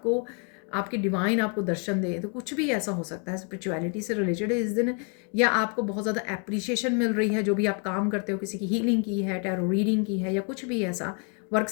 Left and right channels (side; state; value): right; quieter; 37.6 dB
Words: आपके डिवाइन आपको दर्शन दे, तो कुछ भी ऐसा हो सकता है स्पिरिचुअलिटी से रिलेटेड इस दिन। या आपको बहुत ज़्यादा एप्रिसिएशन मिल रही है, जो भी आप काम करते हो, किसी की हीलिंग की है, टैरो रीडिंग की है, या कुछ भी ऐसा वर्क